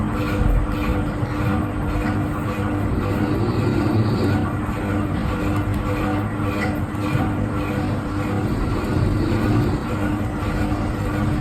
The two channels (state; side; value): identical; both; correlation 1.00